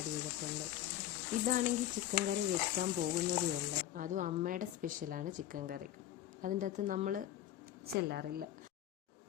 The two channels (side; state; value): right; quieter; 12.5 dB